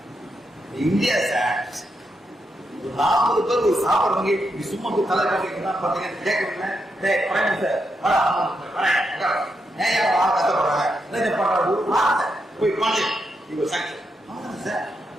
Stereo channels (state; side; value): normal; both; correlation 0.83